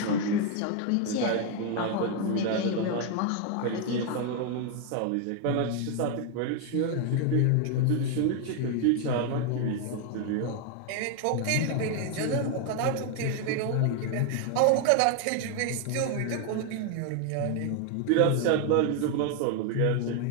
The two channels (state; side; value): different; both; correlation 0.01